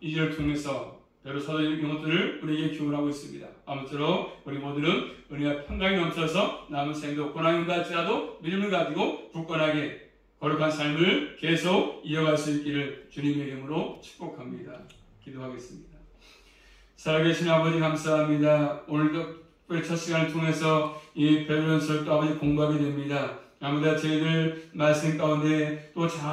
2절을 통해서 여러 사도의 이것들을 우리에게 기원하고 있습니다. 아무쪼록 우리 모두는 은혜와 평강이 넘쳐서 남은 생도 고난이 갈지라도 믿음을 가지고 굳건하게 거룩한 삶을 계속 이어갈 수 있기를 주님의 이름으로 축복합니다. 기도하겠습니다. 살아계신 아버지 감사합니다. 오늘도 첫 시간을 통해서 이 베드로전서를 아버지 공부하게 됩니다. 아무나 저희들 말씀 가운데 또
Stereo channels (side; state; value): both; identical; correlation 1.00